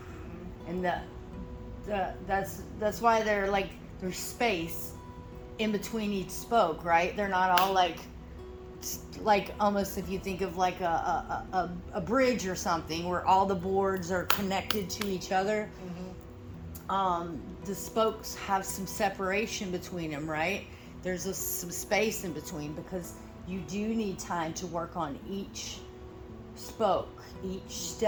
Mm-hmm. And that's why they're like, there's space in between each spoke, right? They're not all like almost, if you think of like a bridge or something where all the boards are connected to each other. Mm-hmm. The spokes have some separation between them, right? There's some space in between, because you do need time to work on each spoke, each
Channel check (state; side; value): identical; both; correlation 1.00